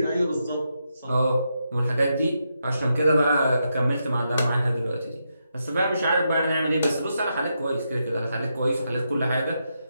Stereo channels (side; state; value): both; inverted; correlation -0.83